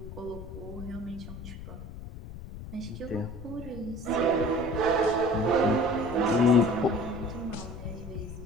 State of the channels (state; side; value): noise; left; rumble, 11 dB below the sound